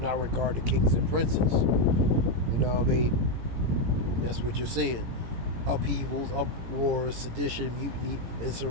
not regard the kings and princes. You know what I mean? And that's what you're seeing. Upheavals, uproars, sedition, mutiny,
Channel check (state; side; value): late; left; 17 ms